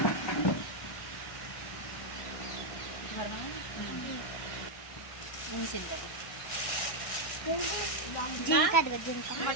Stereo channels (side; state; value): right; late; 1.6 ms